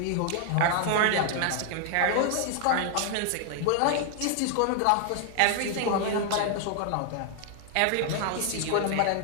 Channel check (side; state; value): both; different; correlation 0.00